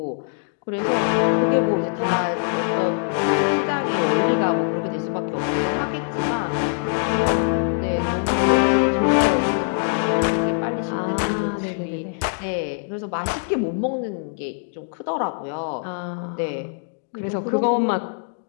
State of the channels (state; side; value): silent; right; digital silence